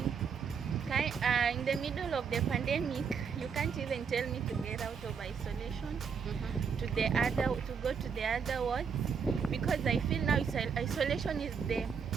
In the middle of the pandemic, you can't even tell me to get out of isolation to go to the other wards, because I feel now isolation is the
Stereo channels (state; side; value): quieter; left; 6.3 dB